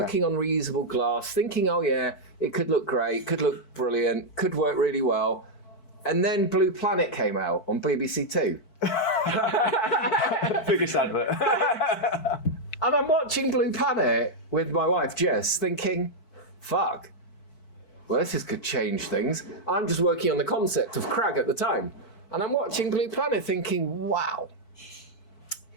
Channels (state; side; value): late; right; 4.5 ms